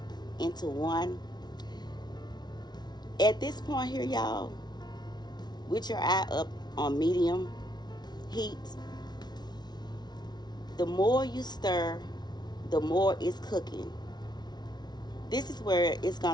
into one. At this point here, y'all, with your eye up on medium heat, the more you stir, the more it's cooking. This is where it's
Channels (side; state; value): right; late; 0.20 ms